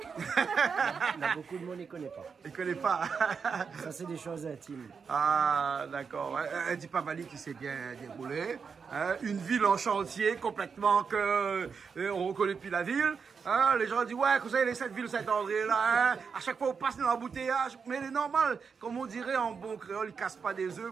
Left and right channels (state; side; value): quieter; left; 5.8 dB